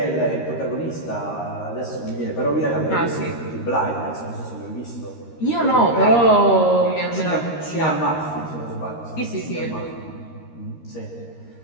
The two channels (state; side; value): late; right; 13 ms